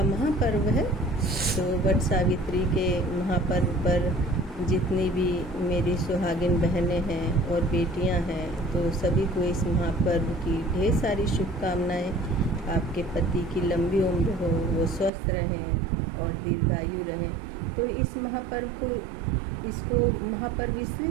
महापर्व है। तो वट सावित्री के महापर्व पर जितनी भी मेरी सुहागिन बहनें हैं और बेटियां हैं, तो सभी को इस महापर्व की ढेर सारी शुभकामनाएं। आपके पति की लंबी उम्र हो, वो स्वस्थ रहें और दीर्घायु रहें। तो इस महापर्व को इसको महापर्व इसलिए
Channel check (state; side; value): drops out; left; at 15.1 s